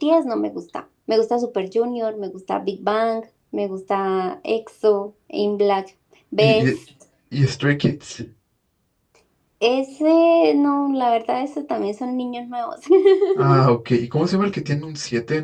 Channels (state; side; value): identical; both; correlation 1.00